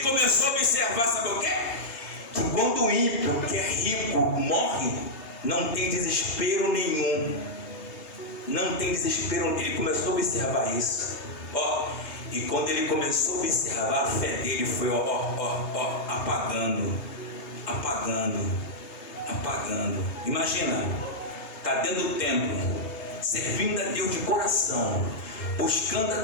começou a observar, sabe o quê? Que quando o ímpio, que é rico, morre, não tem desespero nenhum. Não tem desespero. Ele começou a observar isso. E quando ele começou a observar, a fé dele foi apagando. Imagina, está dentro do templo, servindo a Deus de coração, buscando a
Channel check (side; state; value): right; late; 3.3 ms